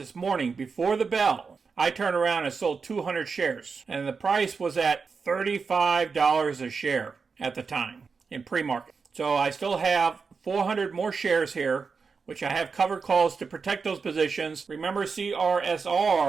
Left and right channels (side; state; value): left; quieter; 5.1 dB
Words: morning before the bell, I turned around and sold 200 shares. And the price was at $35 a share at the time in pre-market. So I still have 400 more shares here, which I have covered calls to protect those positions. Remember,